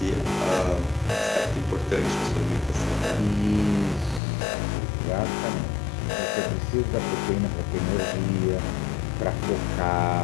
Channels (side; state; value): right; drops out; at 4.2 s